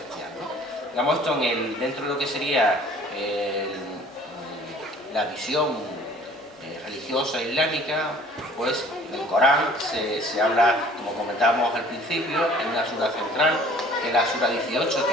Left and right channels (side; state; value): both; normal; correlation 0.52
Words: ¿no? Digamos, esto dentro de lo que sería la visión religiosa islámica, pues en el Corán se habla, como comentábamos al principio, en una sura central, que es la sura 18,